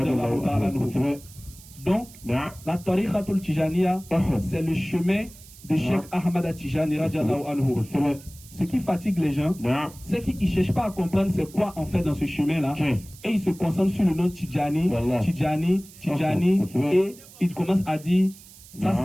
Donc, la Tariqatul Tijaniya, c'est le chemin de Cheikh Ahmad Tijani. Ce qui fatigue les gens, c'est qu'ils ne cherchent pas à comprendre c'est quoi en fait dans ce chemin-là. Et ils se concentrent sur le nom Tijani, Tijani, Tijani, et ils commencent à dire Ça,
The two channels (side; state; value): right; noise; hiss, 21 dB below the sound